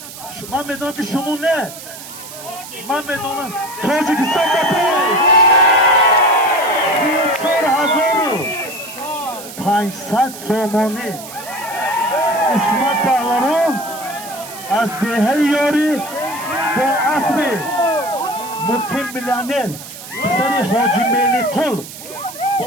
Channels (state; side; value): noise; right; hiss, 14 dB below the sound